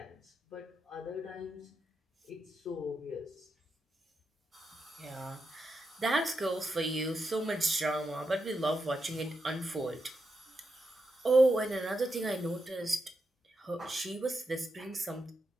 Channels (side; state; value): both; normal; correlation 0.85